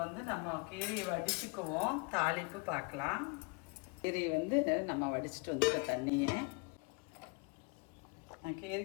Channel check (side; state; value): right; quieter; 30.9 dB